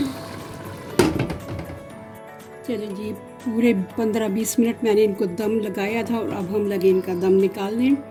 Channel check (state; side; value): identical; both; correlation 1.00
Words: चलें जी, पूरे 15-20 मिनट मैंने इनको दम लगाया था, और अब हम लगे इनका दम निकालने।